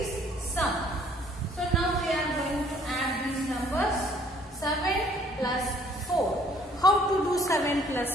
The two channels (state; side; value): normal; both; correlation 0.60